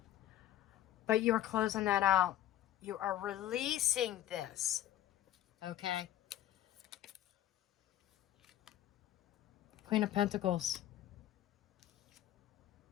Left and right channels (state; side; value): quieter; right; 12.7 dB